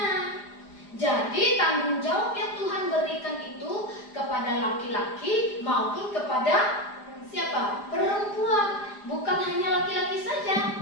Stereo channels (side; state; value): right; late; 4.9 ms